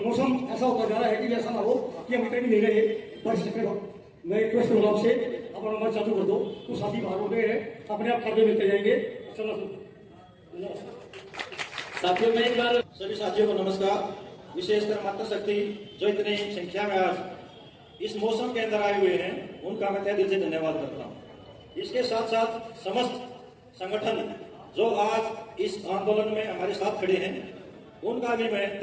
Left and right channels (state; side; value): identical; both; correlation 1.00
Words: मौसम ऐसा होता जा रहा है कि ऐसा ना हो कि हम इतने भी नहीं रहे बारिश चक्कर। मैं रिक्वेस्ट करूंगा आपसे, अपना नंबर चालू कर दो, तो साथी बाहर हो गए हैं, अपने आप कार्य मिलते जाएंगे। साथियों में एक बार सभी साथियों को नमस्कार। विशेषकर मातृशक्ति जो इतनी संख्या में आज इस मौसम के अंदर आए हुए हैं, उनका मैं तहे दिल से धन्यवाद करता हूँ। इसके साथ साथ समस्त संगठन जो आज इस आंदोलन में हमारे साथ खड़े हैं, उनका भी मैं